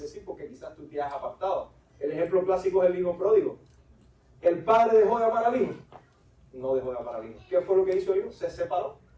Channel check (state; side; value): identical; both; correlation 1.00